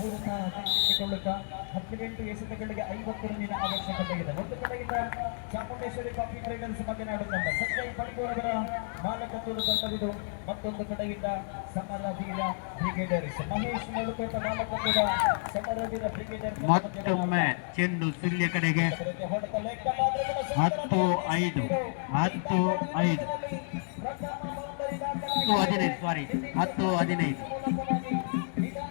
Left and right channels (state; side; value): silent; right; 57 dB below the other